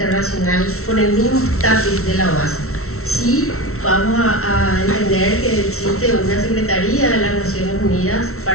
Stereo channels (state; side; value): late; right; 0.63 ms